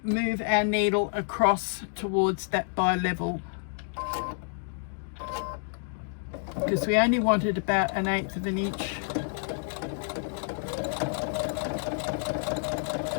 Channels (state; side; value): silent; right; digital silence